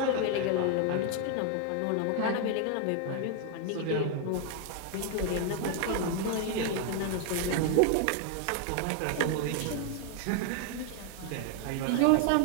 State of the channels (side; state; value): both; different; correlation 0.00